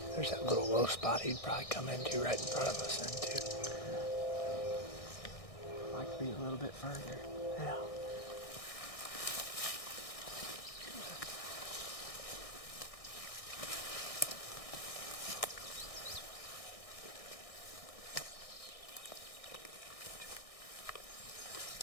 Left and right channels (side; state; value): right; late; 1.6 ms